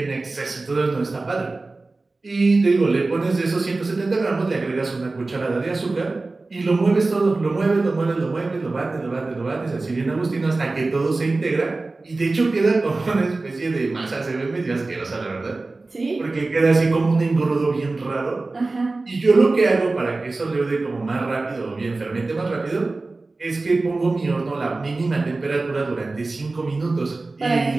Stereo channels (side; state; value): left; quieter; 3.4 dB